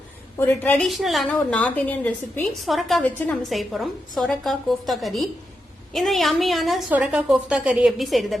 ஒரு ட்ரெடிஷனலான ஒரு நார்த் இந்தியன் ரெசிபி சொரக்காய் வச்சு நம்ம செய்ய போறோம். சொரக்காய் கோஃப்தா கறி. இந்த யம்மியான சொரக்காய் கோஃப்தா கறி எப்படி செய்யறது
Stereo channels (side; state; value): both; normal; correlation 0.86